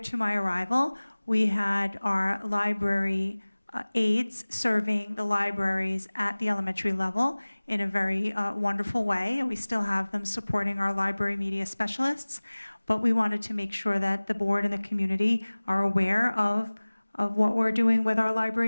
my arrival, we had our library aides serving the libraries at the elementary level in a very wonderful way, and we still have them supporting our library media specialists, but we wanted to make sure that the board and the community are aware of what we're doing with our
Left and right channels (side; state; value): both; inverted; correlation -1.00